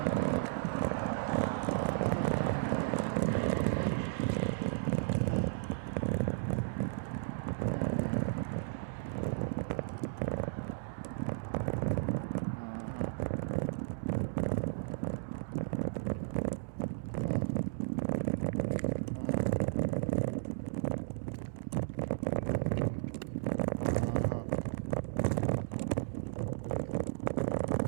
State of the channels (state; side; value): silent; left; digital silence